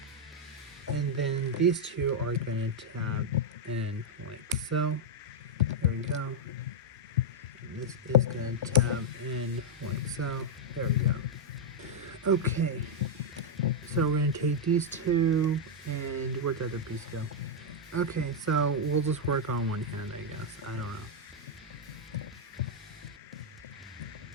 And then these two are going to tab in like so. There we go. And this is going to tab in like so. There we go. Okay. So we're going to take these two, and where'd the other piece go? Okay, so we'll just work on one hand, I guess. I don't know.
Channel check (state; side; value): normal; both; correlation -0.03